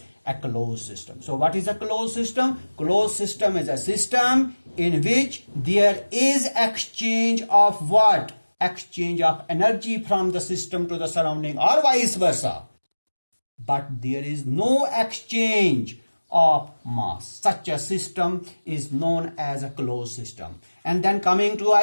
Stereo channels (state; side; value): inverted; both; correlation -1.00